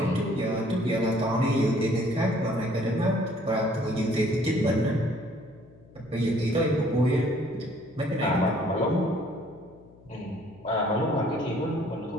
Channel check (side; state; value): left; noise; hum, 25 dB below the sound